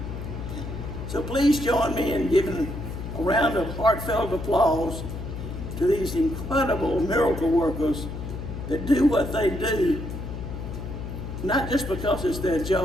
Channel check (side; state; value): left; noise; hum, 7 dB below the sound